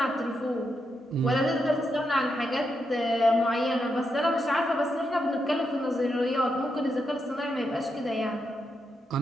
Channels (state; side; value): normal; both; correlation 0.83